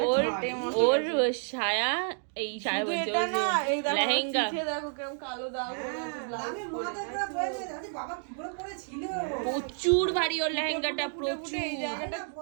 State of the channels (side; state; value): left; silent; 58 dB below the other